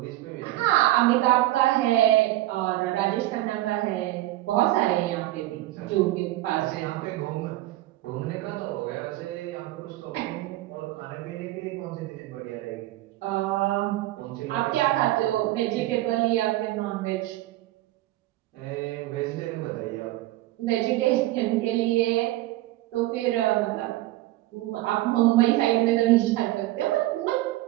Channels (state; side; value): quieter; left; 16.6 dB